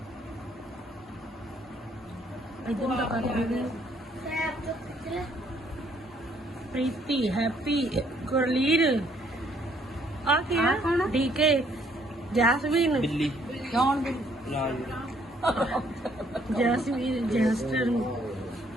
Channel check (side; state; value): both; normal; correlation 0.66